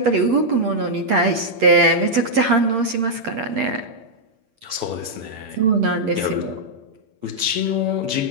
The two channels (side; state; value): left; late; 8.7 ms